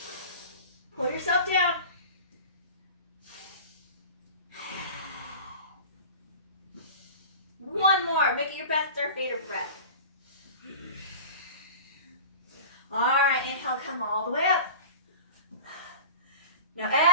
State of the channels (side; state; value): both; inverted; correlation -0.37